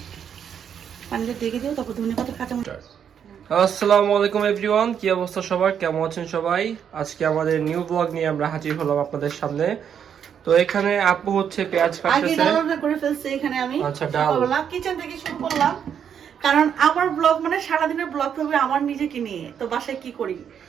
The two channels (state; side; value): quieter; left; 8.2 dB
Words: পানিতে ডেকে দিও, তারপর ধনে পাতা কাঁচামরিচ। আসসালামু আলাইকুম এভরিওয়ান, কি অবস্থা সবার, কেমন আছেন সবাই? আজকে আমাদের নিউ ব্লগ নিয়ে আমরা হাজির হলাম আপনাদের সামনে। তো এখানে আপু হচ্ছে পেঁয়াজ আগে কাটতেছে। ডালটা করে ফেলছি এখানে আমি। আচ্ছা, ডাল। সকালবেলা কিচেন থেকে শুরু করলাম, কারণ আমার ব্লগ মানে সারাদিনের ব্লগ হবে আমার নিজেকে নিয়ে। তো বাসায় কি করি,